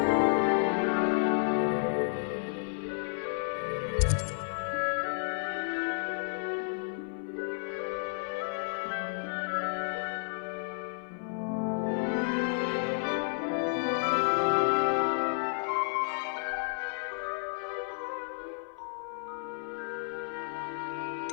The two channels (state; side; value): silent; right; 57 dB below the other